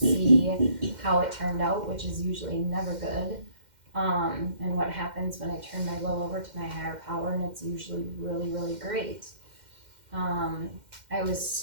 how it turned out, which is usually never good. And what happens when I turn my will over to my higher power, and it's usually really, really great. I was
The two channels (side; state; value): left; late; 2.1 ms